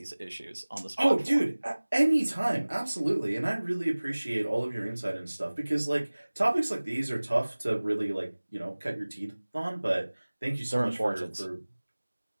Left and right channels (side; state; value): both; inverted; correlation -1.00